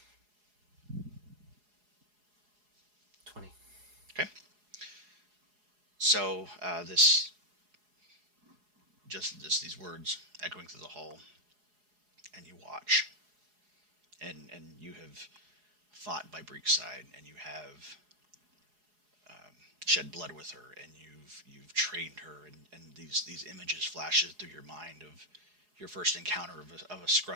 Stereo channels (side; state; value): left; late; 4.8 ms